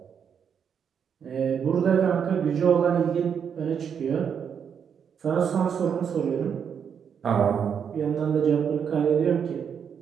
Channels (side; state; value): left; quieter; 7.4 dB